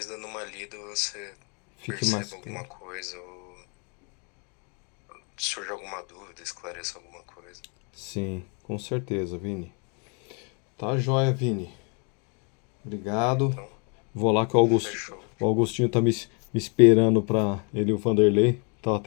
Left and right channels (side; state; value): right; quieter; 35.9 dB